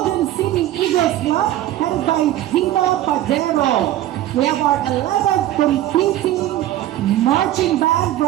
City Eagles Club, headed by Dino Padero. We have our 11th competing marching band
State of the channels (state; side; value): quieter; left; 13.6 dB